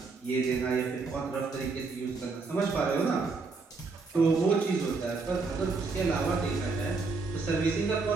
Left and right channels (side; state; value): left; quieter; 4.1 dB